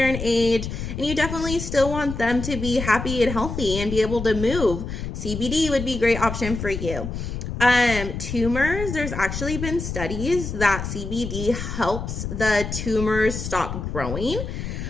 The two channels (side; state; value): left; noise; rumble, 6 dB below the sound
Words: in age, and you definitely still want them to be happy and healthy and be able to move. CBD would be a great option for you. Tumors, there's actually been studies that CBD helps the tumors stop growing.